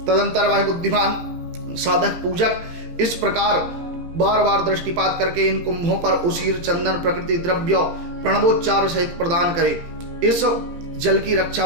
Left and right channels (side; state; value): left; late; 17 ms